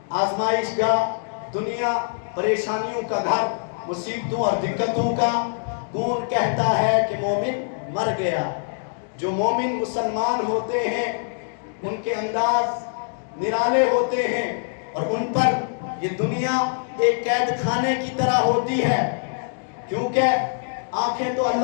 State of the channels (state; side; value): silent; right; digital silence